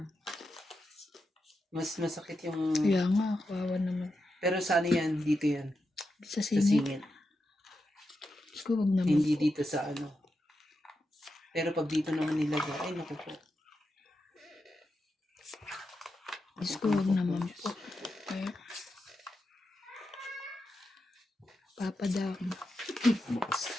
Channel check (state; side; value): normal; both; correlation 0.87